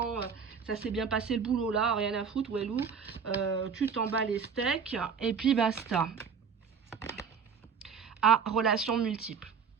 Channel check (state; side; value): quieter; left; 6.3 dB